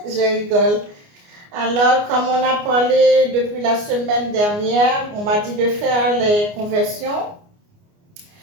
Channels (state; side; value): late; left; 29 ms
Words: Je rigole. Alors, comme on a parlé depuis la semaine dernière, on m'a dit de faire les conversions.